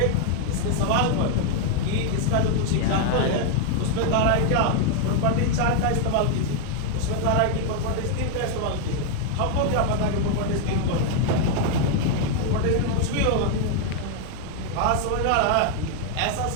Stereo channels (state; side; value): different; both; correlation 0.00